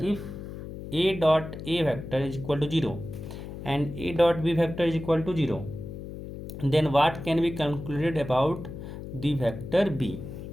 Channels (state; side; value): noise; left; hum, 10 dB below the sound